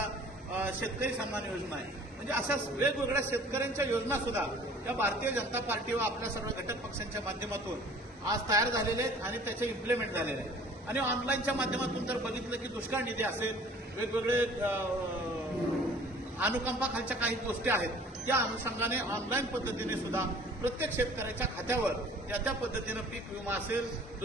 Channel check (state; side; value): normal; both; correlation 0.50